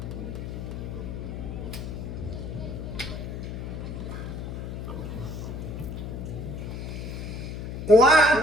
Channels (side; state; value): left; noise; hum, 6 dB below the sound